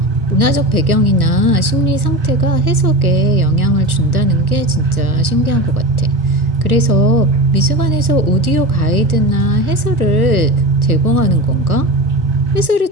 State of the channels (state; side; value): late; left; 1.2 ms